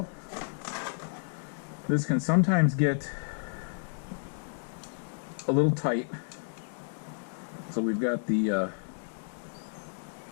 This can sometimes get a little tight, so we've got the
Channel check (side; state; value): right; silent; digital silence